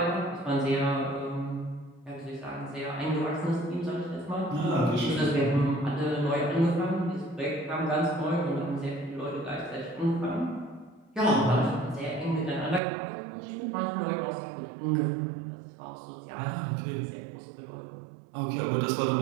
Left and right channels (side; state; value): left; drops out; at 12.8 s